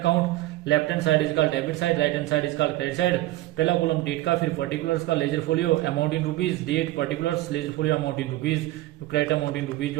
Left hand side is called debit side, right hand side is called credit side. पहला कॉलम डेट का, फिर पर्टिकुलर्स का, ledger folio amount in rupees, date particulars, ledger folio amount in rupees, credit amount in rupees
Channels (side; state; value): left; quieter; 16.8 dB